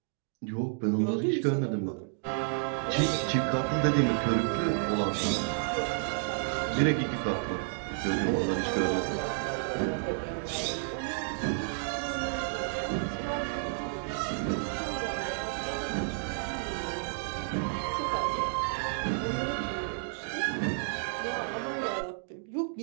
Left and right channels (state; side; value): silent; left; digital silence